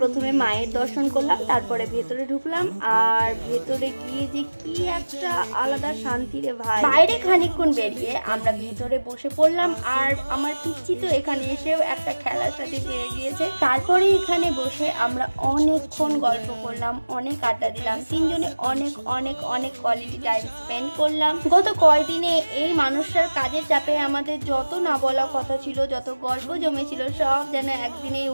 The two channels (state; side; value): inverted; both; correlation -1.00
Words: প্রথমে মায়ের দর্শন করলাম, তারপরে ভেতরে ঢুকলাম। আর ভেতরে গিয়ে যে কি একটা আলাদা শান্তি রে ভাই। বাইরে খানিকক্ষণ বেরিয়ে আমরা ভেতরে বসে পড়লাম, আর আমার পিচ্চি তো এখানে এসেও একটা খেলার সাথে পেয়ে গিয়েছে। তারপরে এখানে বসে আমরা অনেকক্ষণ গল্প করলাম, অনেক আড্ডা দিলাম, তিনজনে অনেক অনেক অনেক কোয়ালিটি টাইম স্পেন্ড করলাম। গত কয়দিনে এই মানুষটার কাজের চাপে আমাদের যত না বলা কথা ছিল, যত গল্প জমেছিল, সব যেন একদিনেই